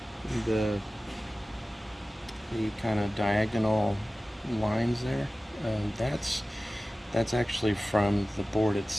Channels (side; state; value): both; normal; correlation 0.96